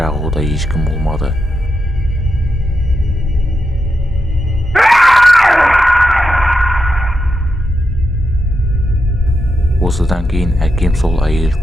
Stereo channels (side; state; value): both; normal; correlation 0.86